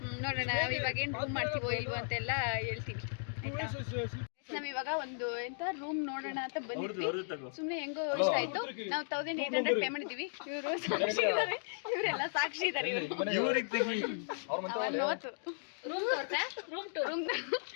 ನೋಡೋಣ ನಾವು ಇವಾಗ ಏನು ರೂಮ್ ಮಾಡ್ತೀವೋ ಇಲ್ವೋ ಅಂತೆಲ್ಲ ಹೇಳ್ತೀವಿ, ಆಯ್ತಾ? ನಾವಿವಾಗ ಒಂದು ಎಂತ ರೂಮ್ ನೋಡೋಣ ಅಂತ ಬಂದಿದ್ವಿ. ಸುಮ್ಮನೆ ಹೆಂಗೋ ಇಷ್ಟ ಆಯ್ತು. ನಾವು 1800 ಪೇ ಮಾಡಿದ್ದೀವಿ. ಇವರು ಸಾಕ್ಷಿ ಇದ್ದಾರೆ, ಇವರೆಲ್ಲ ಸಾಕ್ಷಿ ಇದ್ದಾರೆ. ರೂಮ್ ಟೂರ್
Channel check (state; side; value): silent; right; digital silence